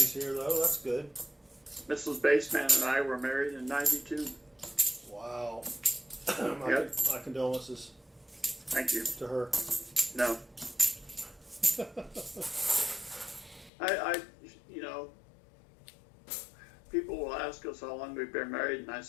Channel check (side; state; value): right; drops out; at 13.7 s